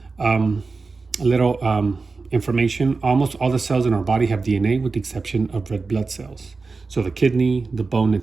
A little information: almost all the cells in our body have DNA, with the exception of red blood cells. So the kidney, the bone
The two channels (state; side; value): quieter; left; 4.1 dB